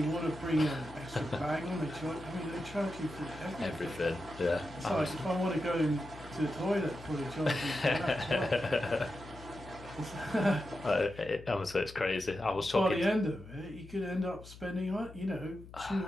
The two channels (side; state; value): left; noise; hum, 17 dB below the sound